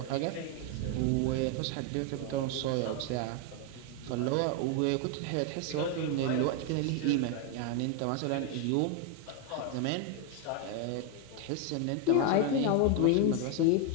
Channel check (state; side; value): different; both; correlation 0.01